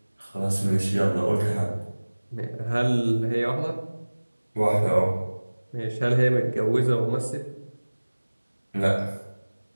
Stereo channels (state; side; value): inverted; both; correlation -1.00